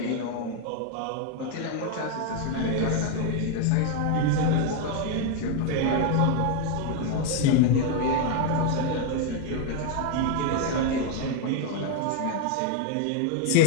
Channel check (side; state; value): both; different; correlation 0.01